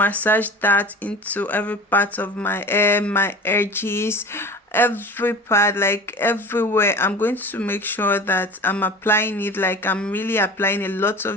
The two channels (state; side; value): normal; both; correlation 0.37